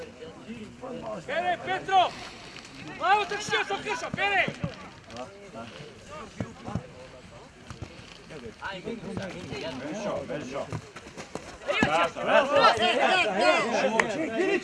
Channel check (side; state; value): both; identical; correlation 1.00